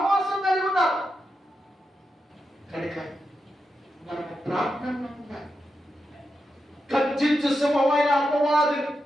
కలిగి ఉన్నారు. కనుక మనకు ప్రార్థనలో ఉండాలి. గర్జించు సింహమైన అపవాదిని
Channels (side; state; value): both; normal; correlation 0.87